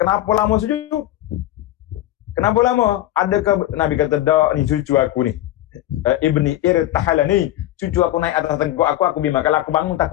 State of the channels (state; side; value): quieter; right; 14.3 dB